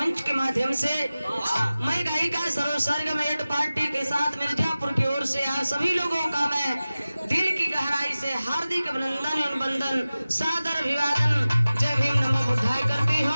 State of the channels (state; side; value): inverted; both; correlation -0.96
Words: के माध्यम से मैं गायिका सरोसर्ग मेट पार्टी के साथ मिर्जापुर की ओर से आप सभी लोगों का मैं दिल की गहराई से हार्दिक अभिनंदन एवं वंदन सादर अभिवादन जय भीम नमो बुद्धाय करती